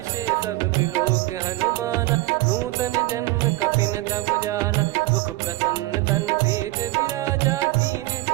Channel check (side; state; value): left; quieter; 18.7 dB